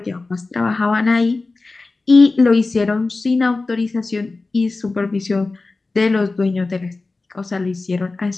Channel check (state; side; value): quieter; right; 3.5 dB